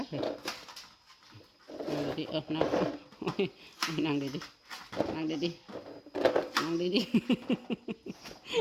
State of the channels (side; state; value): both; identical; correlation 1.00